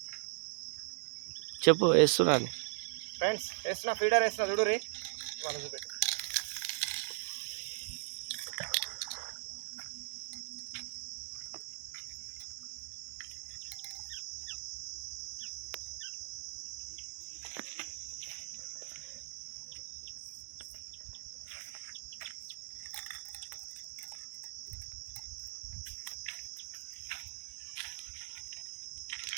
చెప్పు వేస్తున్నా ఫ్రెండ్స్, వేస్తున్నా ఫీడర్ వేస్తున్నా చూడు రీ వాళ్ళు చూపెట్టి.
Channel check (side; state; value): left; silent; digital silence